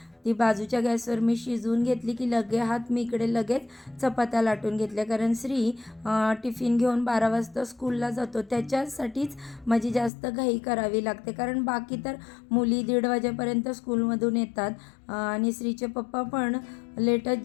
ती बाजूच्या गॅसवर मी शिजवून घेतली की मी इकडे लगेच चपात्या लाटून घेतल्या, कारण श्री टिफिन घेऊन 12 वाजता स्कूलला जातो. त्याच्यासाठीच माझी जास्त घाई करावी लागते, कारण बाकी तर मुली 1:30 वाजेपर्यंत स्कूलमधून येतात आणि श्रीचे पप्पा पण लेटच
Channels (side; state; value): right; drops out; at 10.1 s